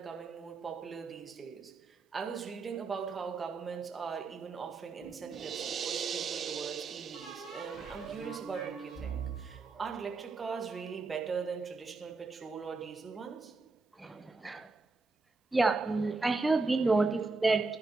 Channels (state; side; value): quieter; left; 3.9 dB